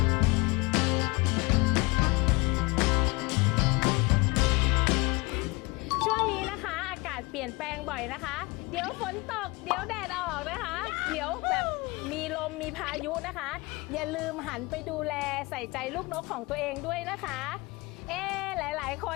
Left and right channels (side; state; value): right; quieter; 25.3 dB